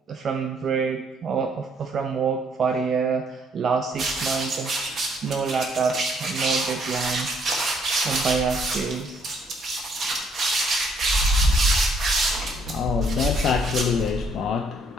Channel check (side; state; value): both; normal; correlation 0.66